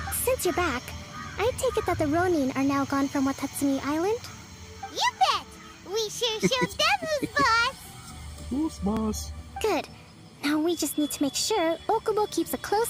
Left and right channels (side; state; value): both; identical; correlation 1.00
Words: Since you're back, I take it that the Ronin are now gone from Watatsumi Island? You bet! We sure showed them who's boss! Who's boss? Good. Now we just need to make sure Okubo keeps a